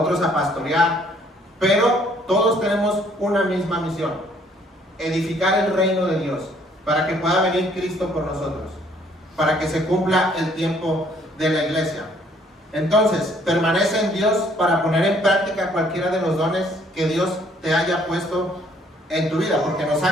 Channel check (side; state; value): both; normal; correlation 0.63